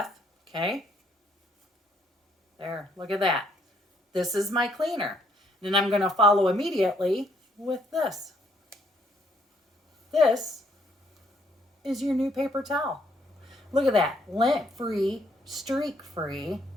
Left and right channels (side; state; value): both; normal; correlation 0.69